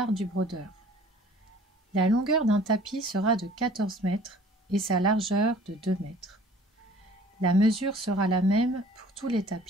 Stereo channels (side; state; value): both; normal; correlation 0.51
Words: du brodeur. La longueur d'un tapis sera de 14 mètres et sa largeur de 2 mètres. La mesure sera la même pour tous les